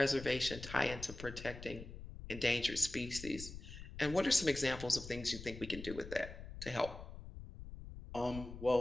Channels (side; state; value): left; noise; rumble, 12 dB below the sound